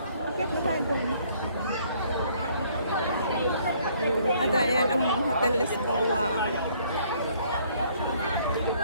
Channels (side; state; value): both; inverted; correlation -0.63